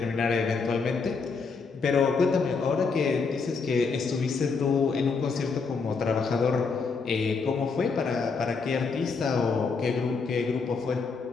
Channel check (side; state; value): right; quieter; 4.8 dB